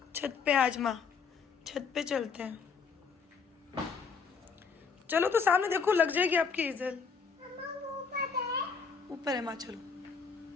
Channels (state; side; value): quieter; right; 5.5 dB